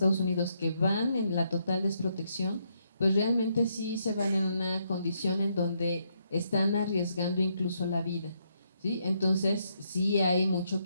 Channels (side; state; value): both; inverted; correlation -0.77